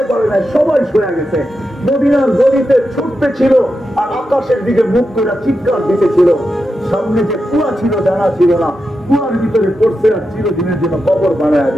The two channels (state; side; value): normal; both; correlation 0.88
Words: পারে নাই, সবাই সয়ে গেছে। মদিনার গলিতে ছুটতে ছিল আর আকাশের দিকে মুখ করে চিৎকার দিতেছিল। সামনে যে কুয়া ছিল জানা ছিল না, কুয়ার ভিতরে পড়ছে আর চিরদিনের জন্য কবর বানায়